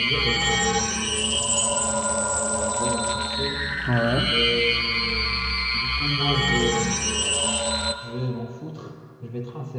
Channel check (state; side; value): identical; both; correlation 1.00